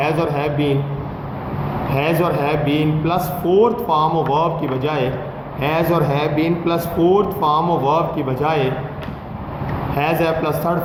और हैव बीन, हैज़ और have been plus fourth form of verb की बजाय, हैज़ और have been plus fourth form of verb की बजाय हैज़ है प्लस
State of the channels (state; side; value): identical; both; correlation 1.00